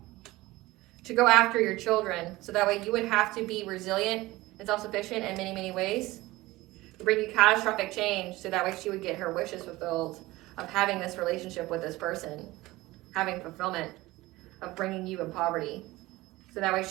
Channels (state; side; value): quieter; left; 19.1 dB